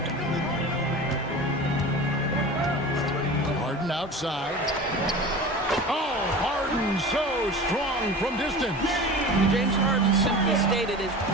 Harden outside. Oh, Harden so strong from distance. James Harden, simply stated, is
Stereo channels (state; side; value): normal; both; correlation 0.34